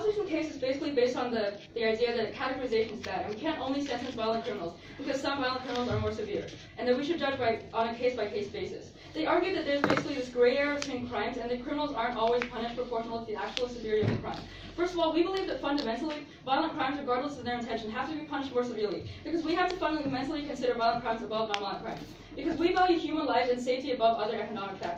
case is basically based on the idea that categorization is bad, and we can't only sentence violent criminals because some violent criminals are more severe, and that we should judge on a case-by-case basis. They argue that there's basically this gray area between crimes, and that criminals aren't always punished proportional to the actual severity of the crime. First of all, we believe that fundamentally, violent crimes, regardless of their intention, have to be punished more severely, because we have to fundamentally consider violent crimes above non-violent crimes. Because we value human lives and safety above other economic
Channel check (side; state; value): both; identical; correlation 1.00